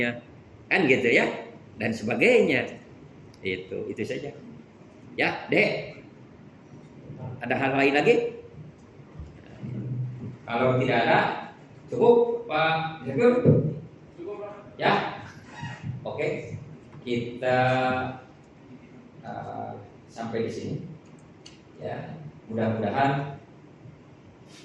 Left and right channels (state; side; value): identical; both; correlation 1.00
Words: kan gitu ya, dan sebagainya. Itu saja. Ya, Dek. Ada hal lain lagi? Kalau tidak ada, cukup, Pak Direktur? Cukup, Pak. Ya. Oke. Kita sampai di sini. Ya, mudah-mudahan